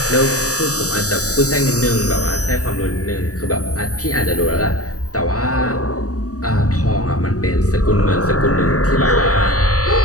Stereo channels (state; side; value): late; right; 0.66 ms